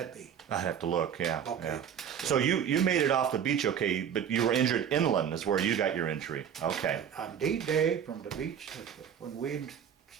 be? I'd have to look, yeah. Okay. Yeah. So you made it off the beach, okay, but you were injured inland is where you got your injury. Okay. On D-Day from the beach, when we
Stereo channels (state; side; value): quieter; left; 8.4 dB